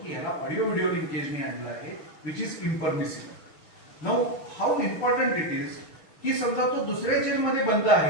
की ह्याला ऑडिओ व्हिडिओ लिंकेजने आणलं आहे, which is impermissible. Now how important it is की समजा तो दुसऱ्या जेलमध्ये बंद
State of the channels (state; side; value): late; right; 6.0 ms